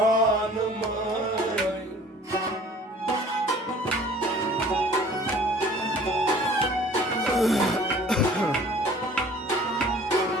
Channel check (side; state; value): both; normal; correlation 0.50